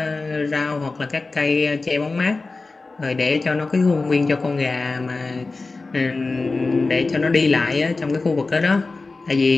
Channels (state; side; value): quieter; right; 3.7 dB